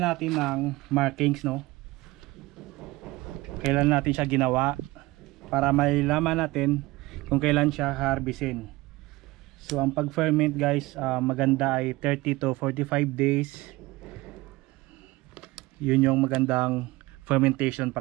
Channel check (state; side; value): quieter; left; 20.5 dB